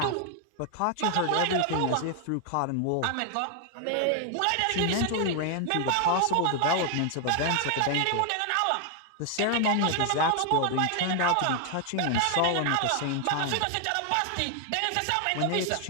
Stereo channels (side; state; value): both; different; correlation 0.00